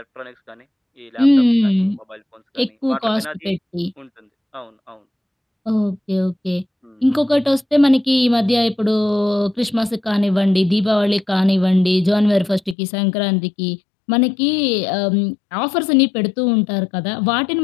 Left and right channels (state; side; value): drops out; right; at 12.8 s